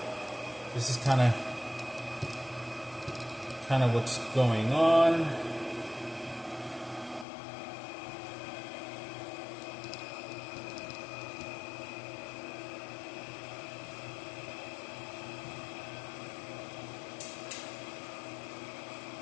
this is kind of what's going on.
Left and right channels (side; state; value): right; drops out; at 7.2 s